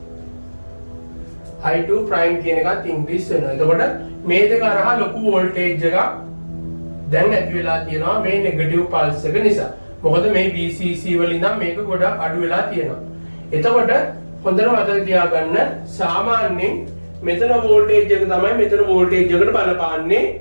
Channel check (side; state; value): both; inverted; correlation -1.00